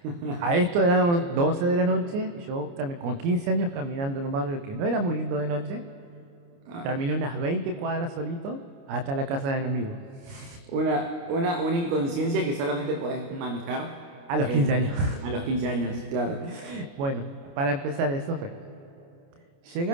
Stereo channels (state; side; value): late; left; 29 ms